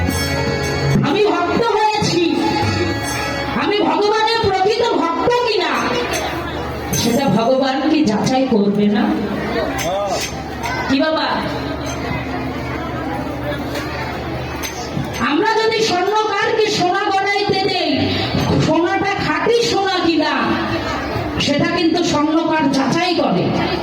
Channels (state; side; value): identical; both; correlation 1.00